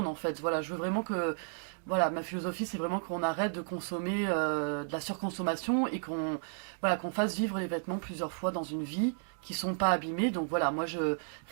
en fait. Voilà, je veux vraiment que, voilà, ma philosophie c'est vraiment qu'on arrête de consommer de la surconsommation et qu'on fasse vivre les vêtements plusieurs fois dans une vie, qui sont pas abîmés. Donc voilà, moi je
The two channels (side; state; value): left; silent; digital silence